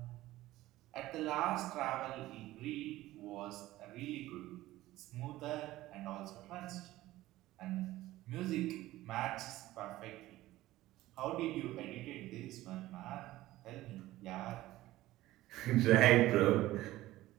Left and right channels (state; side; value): quieter; left; 16.4 dB